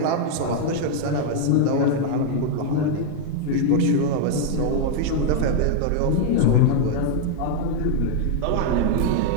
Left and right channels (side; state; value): both; different; correlation 0.00